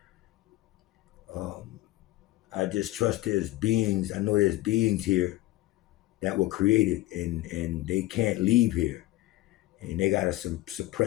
Um, I just trust there's beings. I know there's beings here that were created, and they can't leave here, and they gotta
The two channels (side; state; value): right; quieter; 17.4 dB